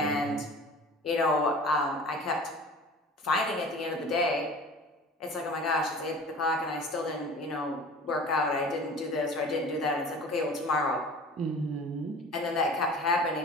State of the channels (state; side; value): normal; both; correlation 0.41